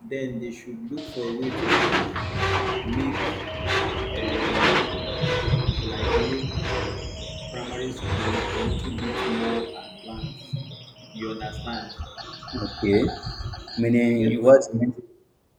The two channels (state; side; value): identical; both; correlation 1.00